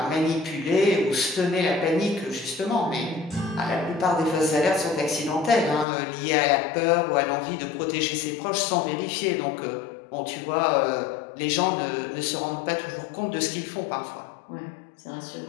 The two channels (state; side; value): drops out; right; at 5.9 s